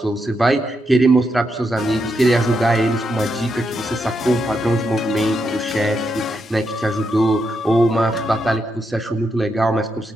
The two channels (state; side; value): normal; both; correlation 0.82